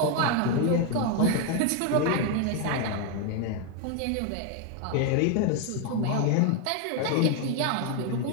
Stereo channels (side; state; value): both; different; correlation 0.01